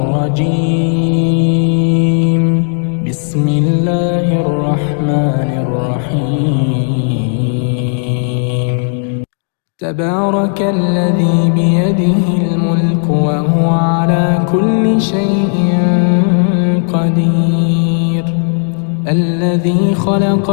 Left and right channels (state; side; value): silent; right; 59 dB below the other